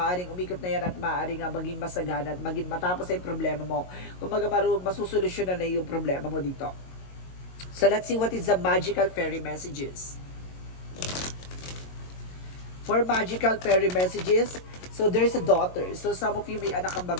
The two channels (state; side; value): late; right; 22 ms